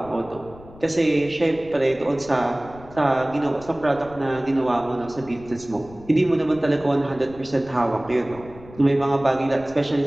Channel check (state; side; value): noise; left; rumble, 19 dB below the sound